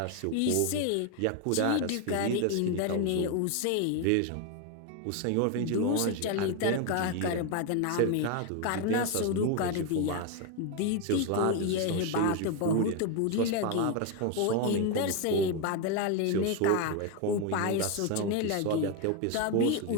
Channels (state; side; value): different; both; correlation 0.02